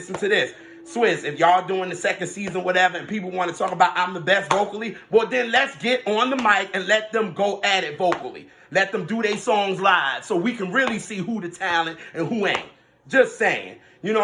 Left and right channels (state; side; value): identical; both; correlation 1.00